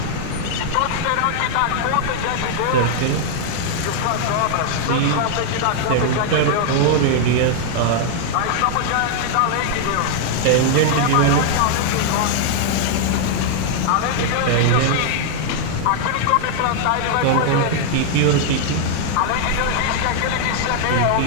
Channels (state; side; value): different; both; correlation -0.01